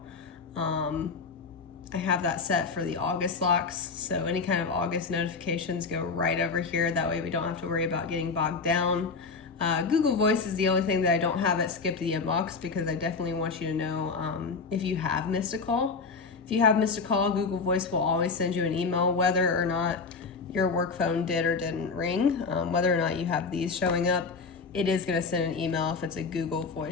I have that set for the August locks, so any kind of August notifications go right over here. That way we don't have to worry about getting bogged down. Google Voice is the only thing that I don't have it skip the inbox, because I definitely want you to know if you have missed a call. If you have missed a call, Google Voice will always send you an email whether or not your work phone did or didn't ring. Whether or not you have these showing up, it is going to send an email if it's a Google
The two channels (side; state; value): right; quieter; 4.6 dB